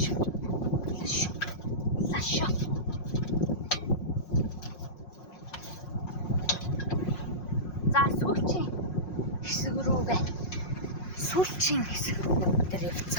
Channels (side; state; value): right; late; 5.6 ms